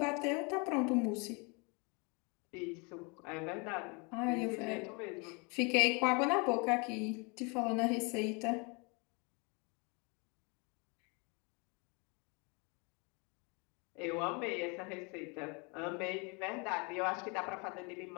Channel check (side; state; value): right; quieter; 31.4 dB